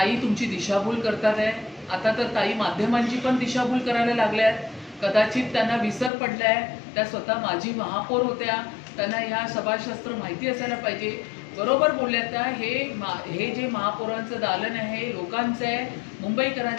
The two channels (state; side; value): drops out; right; at 6.1 s